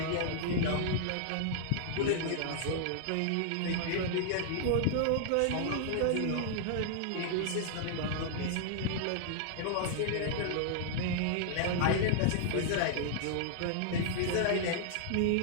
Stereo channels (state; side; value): different; both; correlation -0.01